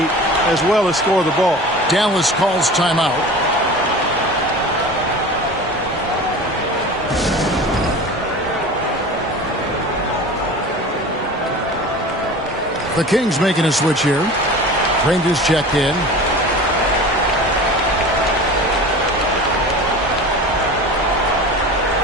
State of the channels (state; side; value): normal; both; correlation 0.36